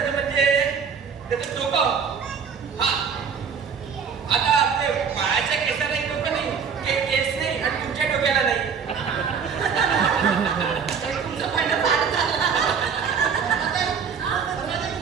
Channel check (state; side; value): quieter; left; 6.5 dB